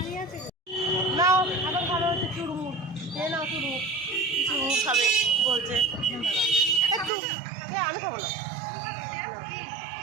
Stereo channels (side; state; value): left; drops out; at 7.1 s